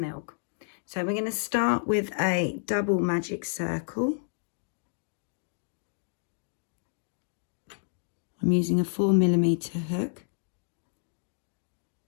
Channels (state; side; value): silent; right; digital silence